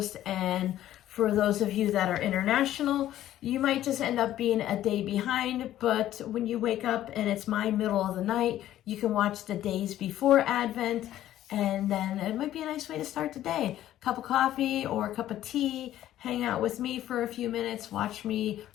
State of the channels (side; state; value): right; quieter; 12.9 dB